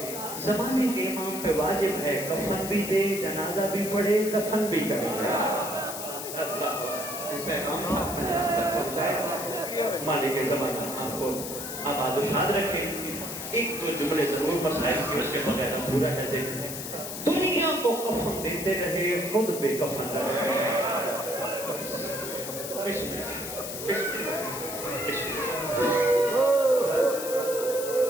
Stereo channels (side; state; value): left; noise; hiss, 7 dB below the sound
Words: زمانے کے امام پہ واجب ہے کفن بھی دے, جنازہ بھی پڑھے, دفن بھی کرے. مالک زمانہ آپ کو آباد و شاد رکھے. ایک دو جملے ضرور مسائل کے اس کے بغیر پورا ہے. دیکھیں دنیا کو کفن دیتے رہے، خود بے کفن رہے۔